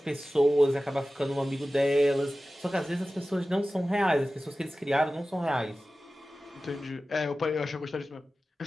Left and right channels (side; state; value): both; normal; correlation 0.95